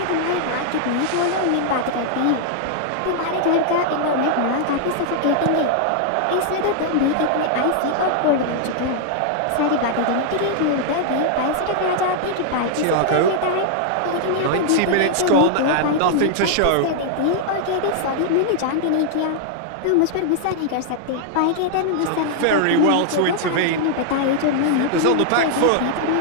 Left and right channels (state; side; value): different; both; correlation -0.01